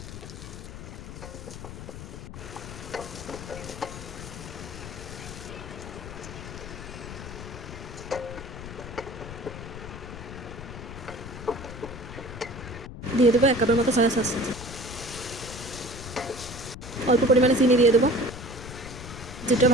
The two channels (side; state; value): left; noise; rumble, 11 dB below the sound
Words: দিয়ে দেবো 1 কাপের মতো সয়া সস। অল্প পরিমাণে চিনি দিয়ে দেবো। যেটা